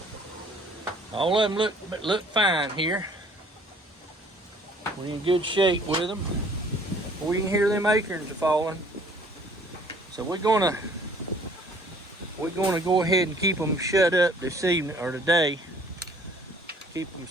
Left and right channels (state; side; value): normal; both; correlation 0.56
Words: All of them look fine here. We're in good shape with them. We can hear them acorns are falling. So we're gonna go ahead and keep them shut up this evening or today. Keep them